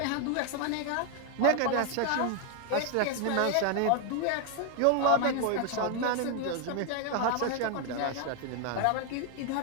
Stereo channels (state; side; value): different; both; correlation 0.01